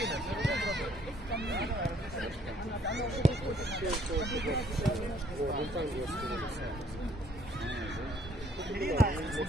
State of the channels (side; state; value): both; normal; correlation 0.63